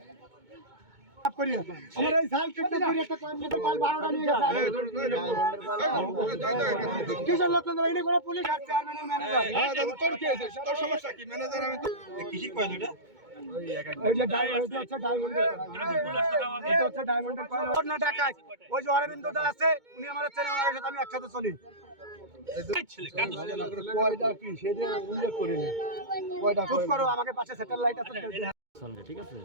আমার এই সাইকেলটা করে একটা কম্পিউটার পাল 12টা নিয়ে গেছে কিসের লোক তোমরা এনে করে পুলিশ আর চেয়ারম্যানের ম্যানেজার তোর কি হয়েছে তোর সমস্যা কি ম্যানেজার আমি তো কিসি কয় দুটা এই যে ডায়মন্ডের হচ্ছে ডায়মন্ডের কয়েন ওর না টাকায় ওই যে অরবিন্দ দা আছে উনি আমার চেনে ওনার সাথে আমি একসাথে চলি কয়টা কি সেটা উল্লেখ করিনি কয়টা চুপ করো আমাকে পাশে স্যাটেলাইট আছে চলবে ঠিক আছে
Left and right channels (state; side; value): late; left; 2.2 ms